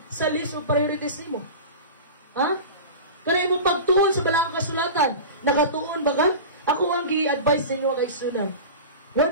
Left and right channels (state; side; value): inverted; both; correlation -0.31